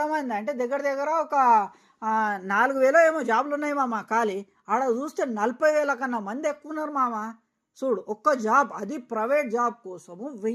అంటే దగ్గర ఒక 4,000 ఏమో జాబ్లు ఉన్నాయి మామ ఖాళీ. ఆడ చూస్తే 40,000 కన్నా మంది ఎక్కువ ఉన్నారు మామ. చూడు ఒక్క జాబ్, అది ప్రైవేట్ జాబ్ కోసము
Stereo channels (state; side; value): identical; both; correlation 1.00